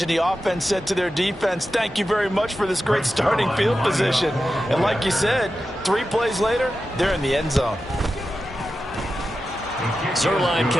the offense said to their defense, thank you very much for this great starting field position. And like you said, 3 plays later, they're in the end zone. Zuerlein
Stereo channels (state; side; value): normal; both; correlation 0.92